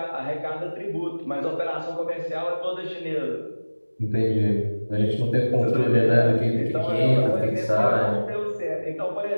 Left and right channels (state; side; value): inverted; both; correlation -1.00